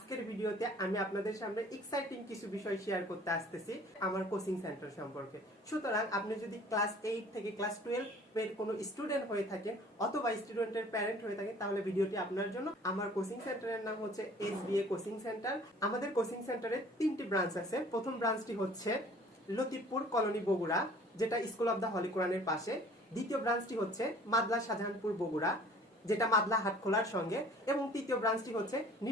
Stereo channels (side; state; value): both; normal; correlation 0.51